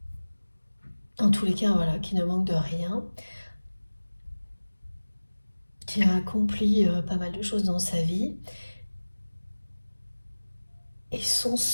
En tous les cas, voilà, qui ne manque de rien, qui a accompli pas mal de choses dans sa vie. Et son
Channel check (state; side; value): inverted; both; correlation -1.00